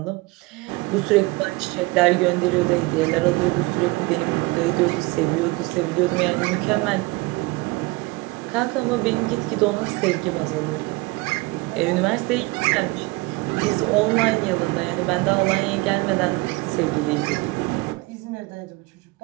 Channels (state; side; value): quieter; left; 23.6 dB